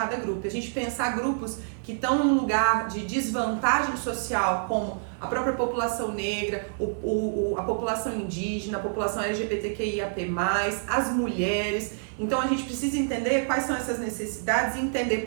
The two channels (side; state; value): left; silent; 60 dB below the other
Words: grupo. A gente pensar grupos que estão em um lugar de desvantagem social, como a própria população negra, a população indígena, a população LGBTQIAP+, as mulheres. Então a gente precisa entender quais são essas necessidades e entender,